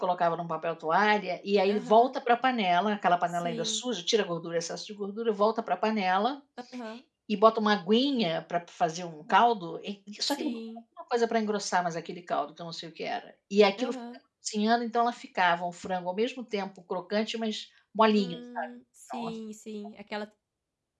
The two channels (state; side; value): identical; both; correlation 1.00